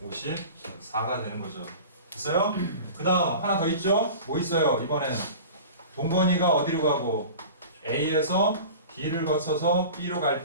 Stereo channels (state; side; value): inverted; both; correlation -0.37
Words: 54가 되는 거죠. 됐어요? 그 다음 하나 더 있죠? 뭐 있어요? 이번엔 동건이가 어디로 가고 A에서 D를 거쳐서 B로 갈